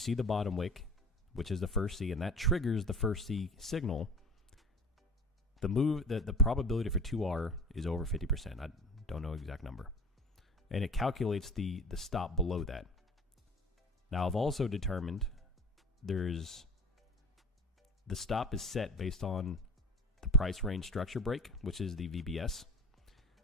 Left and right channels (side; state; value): both; normal; correlation 0.38